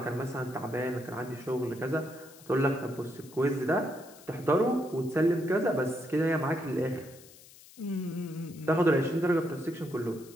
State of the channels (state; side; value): noise; left; hiss, 21 dB below the sound